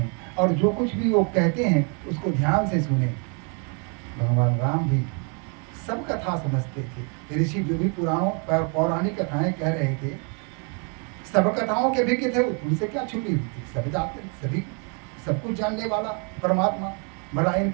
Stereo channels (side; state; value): left; quieter; 37.7 dB